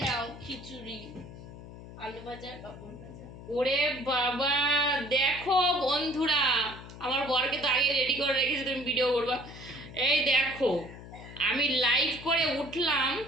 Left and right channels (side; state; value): left; noise; hum, 15 dB below the sound